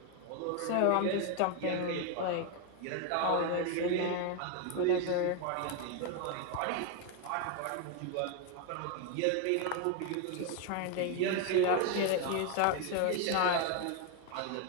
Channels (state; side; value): different; both; correlation 0.01